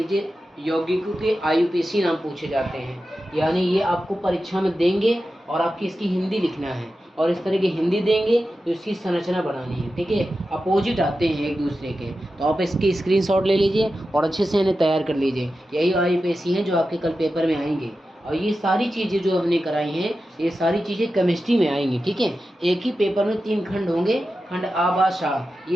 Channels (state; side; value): normal; both; correlation 0.92